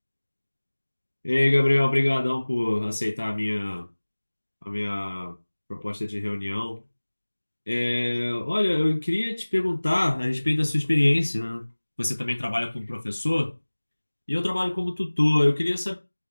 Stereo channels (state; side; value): inverted; both; correlation -1.00